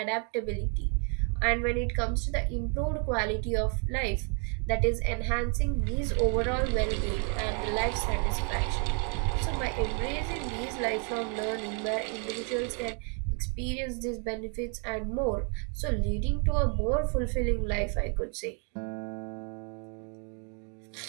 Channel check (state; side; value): quieter; left; 38.4 dB